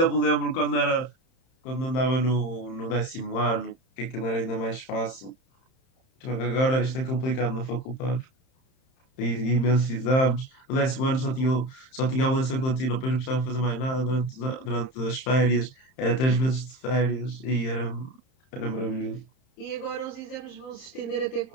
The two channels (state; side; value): late; right; 31 ms